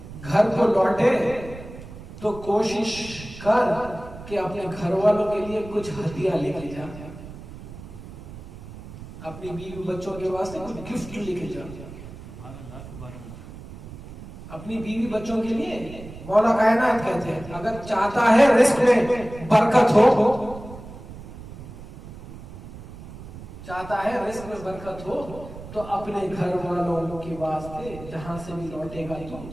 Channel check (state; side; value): noise; right; rumble, 14 dB below the sound